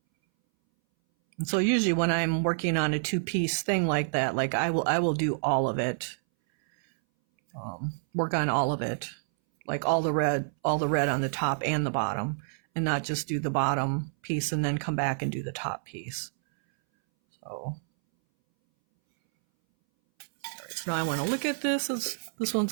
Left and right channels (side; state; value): left; silent; 59 dB below the other